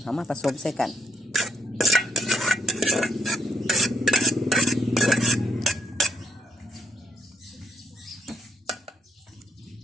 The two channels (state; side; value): normal; both; correlation 0.75